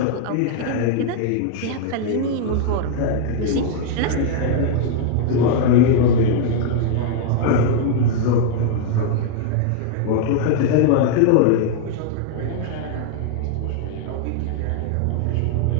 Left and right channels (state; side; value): different; both; correlation 0.00